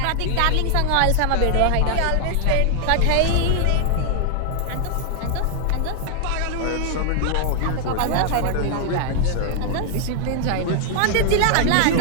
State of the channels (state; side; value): different; both; correlation 0.00